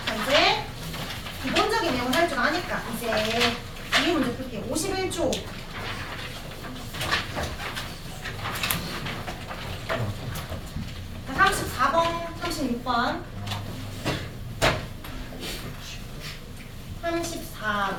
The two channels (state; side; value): identical; both; correlation 1.00